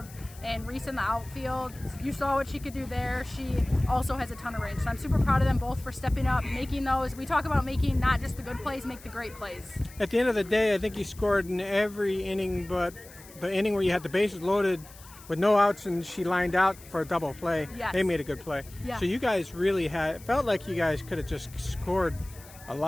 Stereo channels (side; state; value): left; noise; hiss, 20 dB below the sound